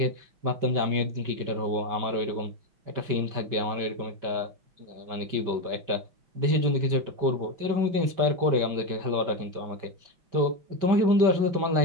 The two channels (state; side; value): late; left; 5.2 ms